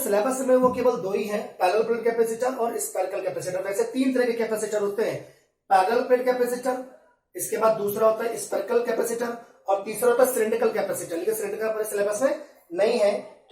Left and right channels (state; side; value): identical; both; correlation 1.00